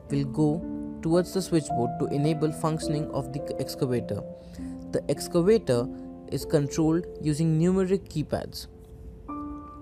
will go towards the switchboard to enable functioning of the excavator. The excavator is controlled using numeric keypads.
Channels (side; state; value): both; identical; correlation 1.00